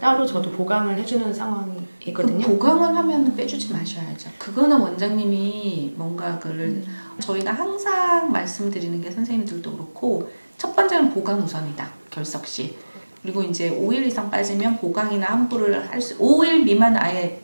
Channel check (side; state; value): both; inverted; correlation -1.00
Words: 저도 보강을 해주는 상황이거든요. 보강을 하면 빼주지 마셔야죠. 그거는 원장님이 뭔가 그를 저희가 항상 말씀드리는 게 선생님들도 그렇고 첫 번째는 보강 우선이다. 결석 시. 그리고 이제 5일 이상 빠지면 보강이나 환불을 할 수 5일 미만 아예